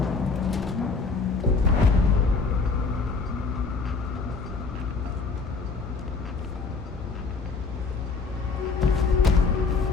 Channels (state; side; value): quieter; right; 4.3 dB